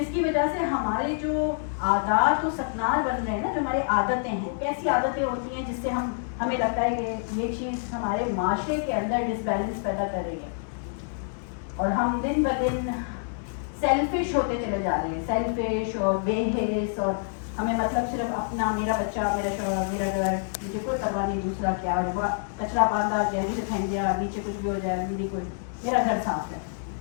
کی وجہ سے ہمارے جو عادات و سکنار بن رہے ہیں نا، جو ہماری عادتیں ہیں، کیسی عادتیں ہوتی ہیں جس سے ہمیں لگتا ہے کہ یہ چیز ہمارے معاشرے کے اندر ڈس بیلنس پیدا کر رہی ہے، اور ہم دن بدن سیلفش ہوتے چلے جا رہے ہیں، سیلفش اور بے حس، اور ہمیں مطلب صرف اپنا، میرا بچہ، میرا شوہر، میرا گھر، مجھے کوئی پرواہ نہیں دوسرا کیا، اور کچرا باندھا گیا نیچے پھینک دیا، نیچے کچھ بھی ہو جائے میرا گھر صاف ہے.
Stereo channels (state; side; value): silent; right; digital silence